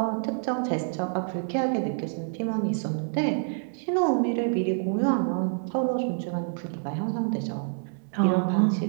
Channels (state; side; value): silent; left; digital silence